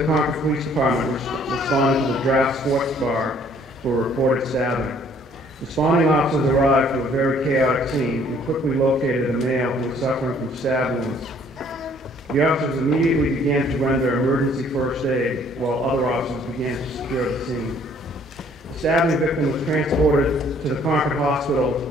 Concord Police Department responded to the Draft Sports Bar for a reported stabbing. Responding officers arrived to a very chaotic scene and quickly located a male who was suffering from stab wounds. The officers immediately began to render emergency first aid, while other officers began to secure the scene. The stabbing victim was transported to the Concord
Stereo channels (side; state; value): both; normal; correlation 0.60